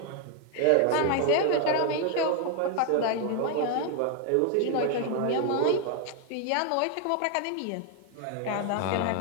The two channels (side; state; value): both; different; correlation 0.01